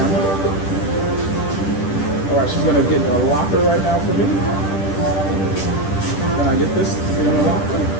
All right, she's gonna get a locker right now for me. Can I get this to be on the locker?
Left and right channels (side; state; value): right; late; 10 ms